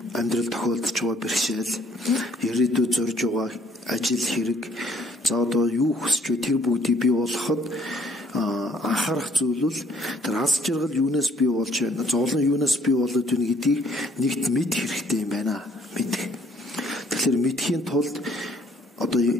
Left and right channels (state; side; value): normal; both; correlation 0.63